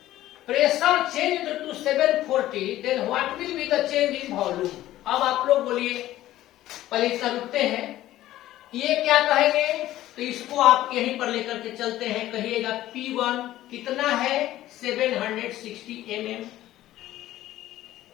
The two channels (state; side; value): quieter; right; 14.5 dB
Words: pressure change to 740, then what will be the change in volume? अब आप लोग बोलिए, पहले इतना रुकते हैं, ये क्या कहेंगे? तो इसको आप यहीं पर लेकर के चलते हैं, कहिएगा P1 कितना है 760 mm,